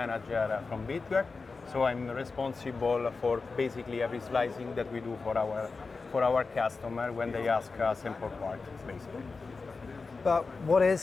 from BigRep. So I'm responsible for basically every slicing that we do for our customer when they ask a sample part, basically. But what is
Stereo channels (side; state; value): right; quieter; 4.3 dB